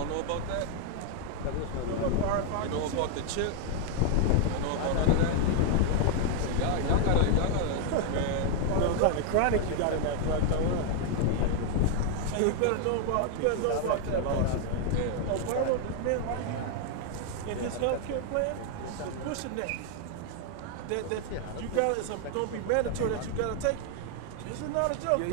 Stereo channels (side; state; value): both; different; correlation 0.00